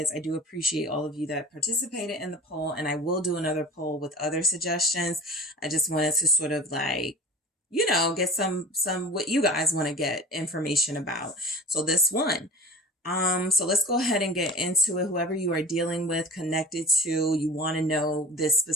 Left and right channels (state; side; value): normal; both; correlation 0.38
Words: I do appreciate all of you that participated in the poll, and I will do another poll with other suggestions. I just wanted to sort of like, you know, get some what you guys want to get information about. So this one. So let's go ahead and get into it. Whoever you are dealing with, connected to, you want to know this